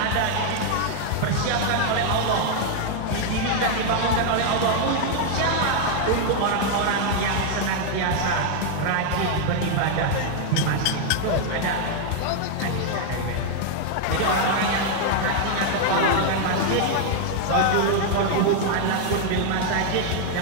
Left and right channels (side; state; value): both; different; correlation 0.00